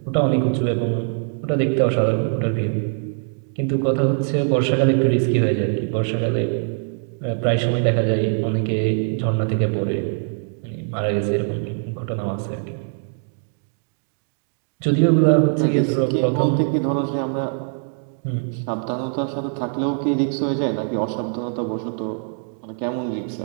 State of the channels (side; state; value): left; silent; 64 dB below the other